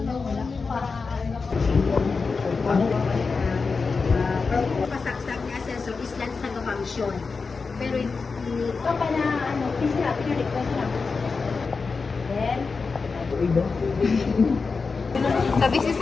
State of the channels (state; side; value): quieter; right; 4.6 dB